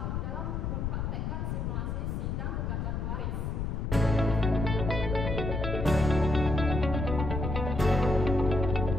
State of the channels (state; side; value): noise; left; rumble, 2 dB below the sound